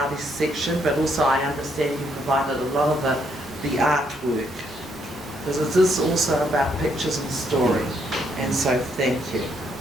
section, but also I understand you provided a lot of the artwork, because it is also about pictures and story, and so thank you.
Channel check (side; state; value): both; normal; correlation 0.73